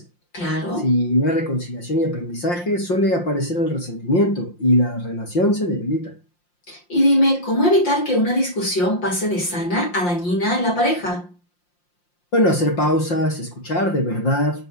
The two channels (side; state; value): right; late; 5.7 ms